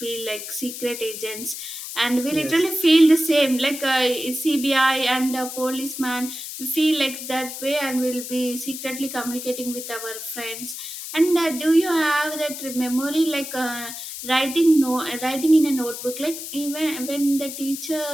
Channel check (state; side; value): noise; left; hiss, 9 dB below the sound